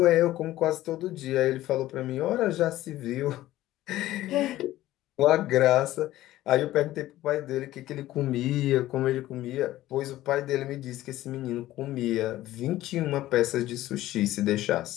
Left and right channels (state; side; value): quieter; right; 15.2 dB